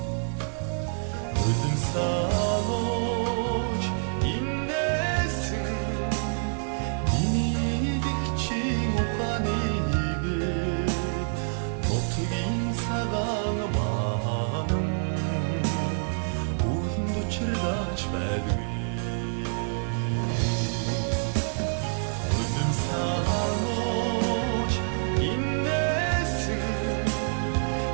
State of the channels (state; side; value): silent; left; digital silence